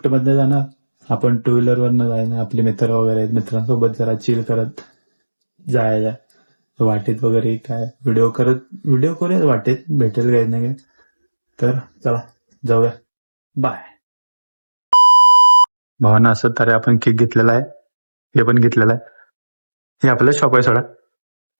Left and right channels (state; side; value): inverted; both; correlation -1.00